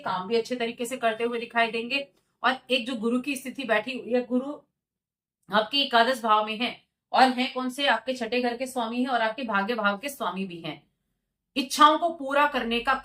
भी अच्छे तरीके से करते हुए दिखाई देंगे। और एक जो गुरु की स्थिति बैठी हुई है, गुरु आपके एकादश भाव में है, और है कौन से, आपके छठे घर के स्वामी है और आपके भाग्य भाव के स्वामी भी हैं। इच्छाओं को पूरा करने का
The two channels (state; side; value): identical; both; correlation 1.00